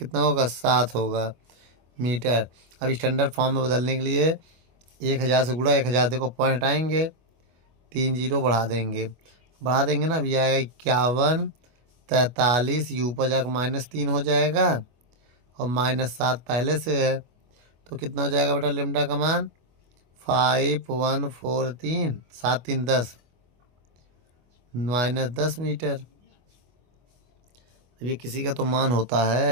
होगा 7 होगा मीटर। अब स्टैंडर्ड फॉर्म में बदलने के लिए 1000 से गुणा 1000, देखो पॉइंट हटाएंगे 3 जीरो बढ़ा देंगे ना, अब ये आएगा 51 43, यू पर जाकर -3 हो जाएगा और -7 पहले से है, तो कितना हो जाएगा बेटा लेमडा का मान 5143, 7 3 10 -10 मीटर। अब ये किसी का तो मान होता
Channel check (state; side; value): late; left; 24 ms